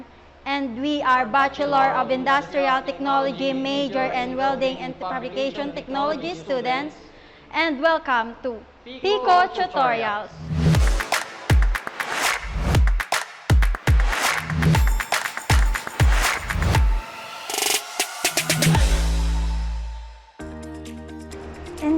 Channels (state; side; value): identical; both; correlation 1.00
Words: and we are Bachelor of Industrial Technology major and Welding and Fabrication Technology students, and welcome to Pico Tutorials. In